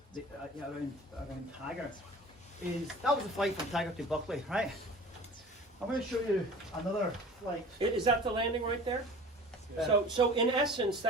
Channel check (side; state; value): both; normal; correlation 0.41